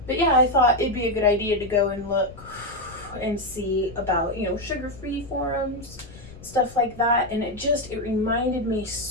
But yeah, I thought it'd be a good idea to go and look and see about, sugar-free forums, stuff like that. And it reminded me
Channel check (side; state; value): left; noise; rumble, 19 dB below the sound